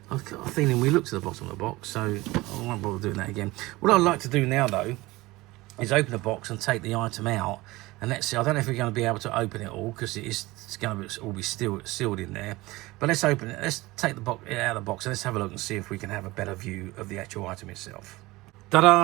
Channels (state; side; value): quieter; left; 20.3 dB